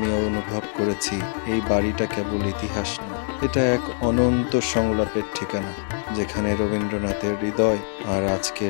অনুভব করেছি এই বাড়িটা কেবল ইতিহাস না, এটা এক অনন্ত সংলাপের ঠিকানা, যেখানে রবীন্দ্রনাথের হৃদয় আর আজকের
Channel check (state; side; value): silent; right; 63 dB below the other